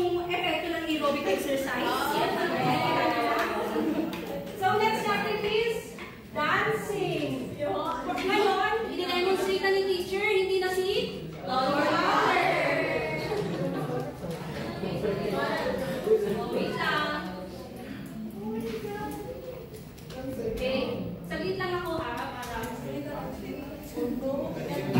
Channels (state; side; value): identical; both; correlation 1.00